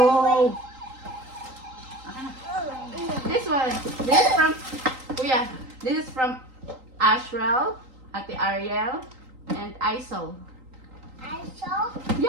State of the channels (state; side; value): late; left; 3.8 ms